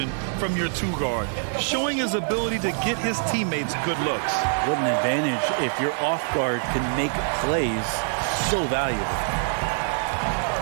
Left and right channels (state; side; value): silent; left; digital silence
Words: from your two-guard, showing his ability to get his teammates good looks. What an advantage if your off guard can make plays. So valuable.